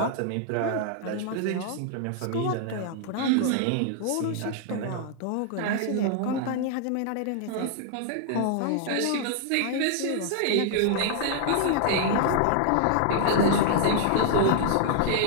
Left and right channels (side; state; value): both; different; correlation -0.01